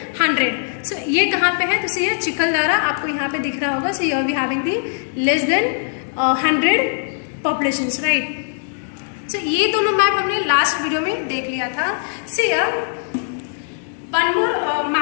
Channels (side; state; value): right; silent; digital silence